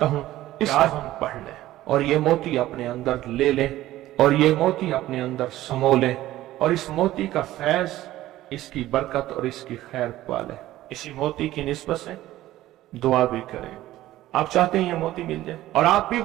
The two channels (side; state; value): left; quieter; 15.1 dB